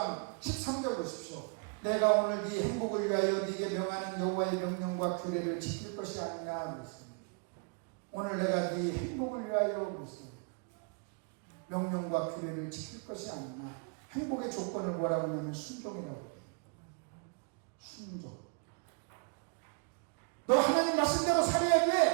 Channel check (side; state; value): left; quieter; 37.3 dB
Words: 13절 보십시오. 내가 오늘 네 행복을 위하여 네게 명하는 여호와의 명령과 규례를 지킬 것이 아니냐 그랬습니다. 오늘 내가 네 행복을 위하여 그랬습니다. 명령과 규례를 지킬 것이 아니냐. 행복의 조건을 뭐라고 하냐면 순종이라고 해요. 순종. 너 하나님 말씀대로 살아야